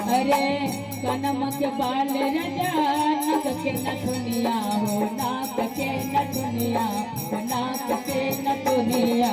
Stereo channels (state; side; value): identical; both; correlation 1.00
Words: अरे कनम के बाल रजा नक के नथुनिया हो नाक के नथुनिया नाक के नथुनिया